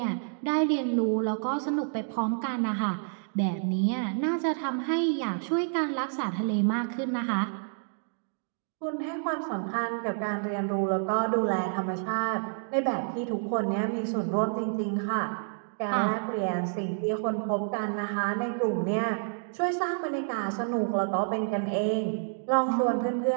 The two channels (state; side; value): silent; left; digital silence